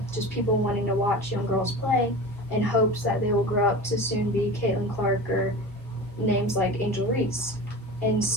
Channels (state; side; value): normal; both; correlation 0.32